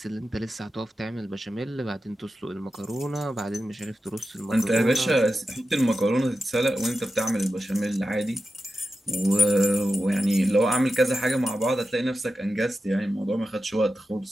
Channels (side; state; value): both; normal; correlation 0.92